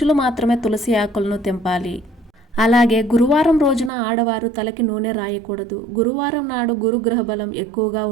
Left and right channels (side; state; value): left; drops out; at 3.9 s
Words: మాత్రమే తులసి ఆకులను తెంపాలి. అలాగే గురువారం రోజున ఆడవారు తలకి నూనె రాయకూడదు. గురువారం నాడు గురుగ్రహ బలం ఎక్కువగా